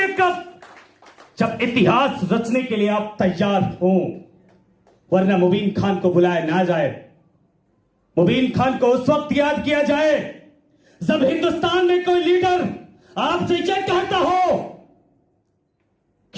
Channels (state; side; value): identical; both; correlation 1.00